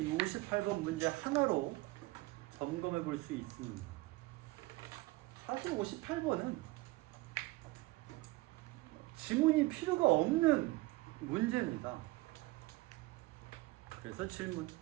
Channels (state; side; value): quieter; left; 21.1 dB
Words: 58번 문제 하나로 점검해 볼 수 있습니다. 사실 58번은 지문이 필요가 없는 문제입니다. 그래서 질문,